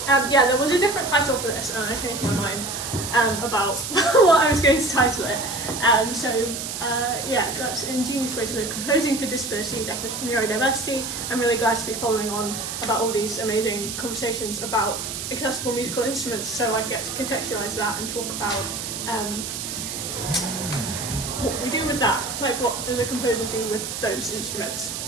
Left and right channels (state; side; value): noise; right; hiss, 6 dB below the sound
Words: Yeah, there was a different title for this, and I changed my mind about what I was going to title it. Yeah, that's Ingenious Ways of Composing for Disability, Neurodiversity. I'm really glad to be following on about all these amazing conversations about accessible musical instruments, so I get to contextualise that and talk about what we do with that, like what does a composer do with those instruments.